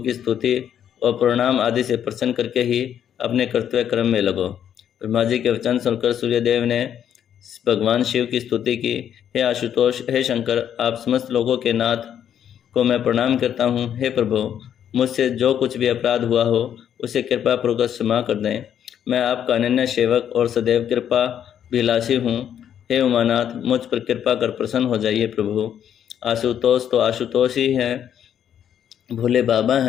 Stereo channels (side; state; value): right; quieter; 9.4 dB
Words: स्तुति और प्रणाम आदि से प्रसन्न करके ही अपने कर्तव्य कर्म में लगो। ब्रह्मा जी के वचन सुनकर सूर्यदेव ने भगवान शिव की स्तुति की। हे आशुतोष, हे शंकर, आप समस्त लोगों के नाथ को मैं प्रणाम करता हूँ। हे प्रभु, मुझसे जो कुछ भी अपराध हुआ हो उसे कृपा पूर्वक क्षमा कर दें। मैं आपका अनन्य सेवक और सदैव कृपा अभिलाषी हूँ। हे उमानाथ, मुझ पर कृपा कर प्रसन्न हो जाइए प्रभु। आशुतोष तो आशुतोष ही हैं, भोले बाबा